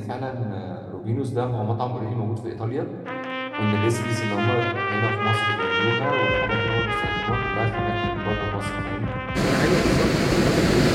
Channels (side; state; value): both; identical; correlation 1.00